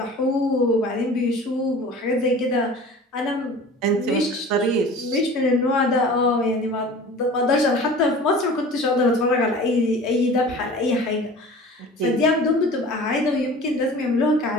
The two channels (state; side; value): normal; both; correlation 0.41